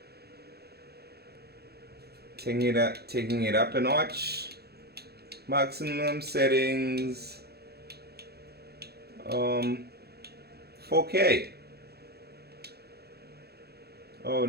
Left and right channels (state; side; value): late; left; 0.47 ms